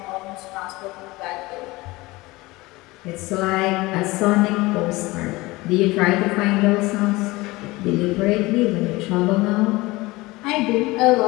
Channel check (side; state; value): right; quieter; 21.2 dB